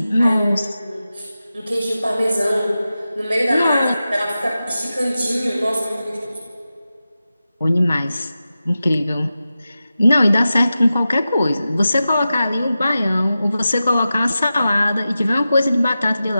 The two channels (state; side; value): inverted; both; correlation -0.93